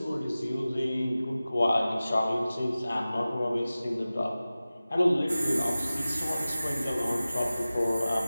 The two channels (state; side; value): inverted; both; correlation -0.96